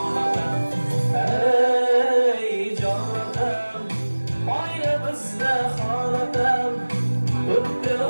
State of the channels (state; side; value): inverted; both; correlation -1.00